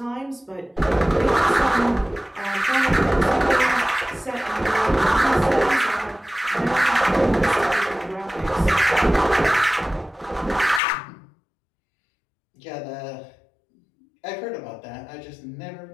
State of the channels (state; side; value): drops out; right; at 10.8 s